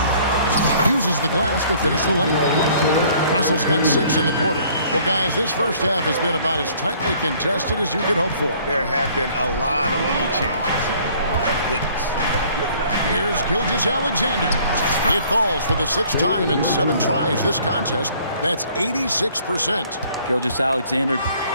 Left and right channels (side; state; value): both; inverted; correlation -0.57